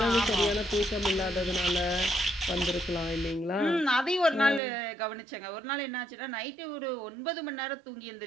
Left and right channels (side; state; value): left; drops out; at 4.6 s